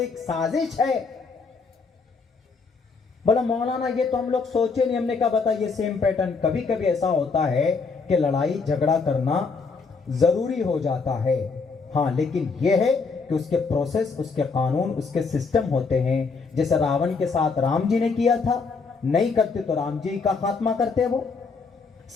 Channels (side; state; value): right; quieter; 4.7 dB